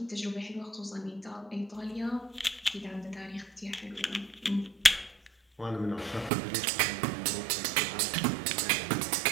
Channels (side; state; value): left; drops out; at 6.3 s